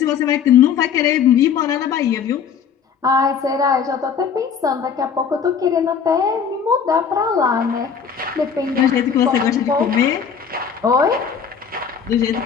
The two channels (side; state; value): right; quieter; 6.9 dB